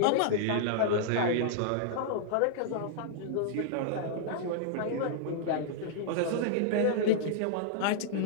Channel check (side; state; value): both; different; correlation -0.01